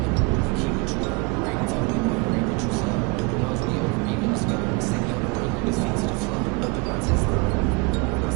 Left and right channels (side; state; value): left; quieter; 27.8 dB